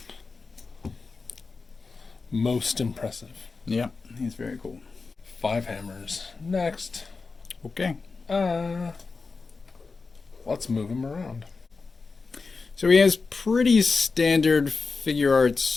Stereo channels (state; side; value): quieter; right; 4.3 dB